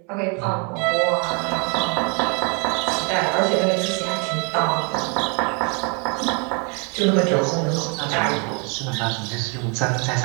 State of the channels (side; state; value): left; quieter; 35.0 dB